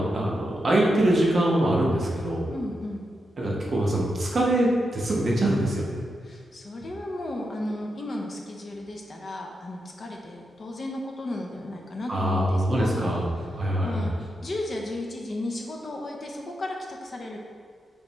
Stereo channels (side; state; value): both; normal; correlation 0.85